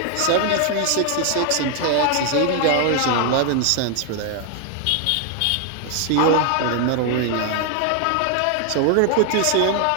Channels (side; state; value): both; different; correlation 0.00